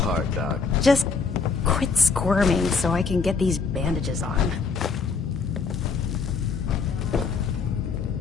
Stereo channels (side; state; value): right; quieter; 4.9 dB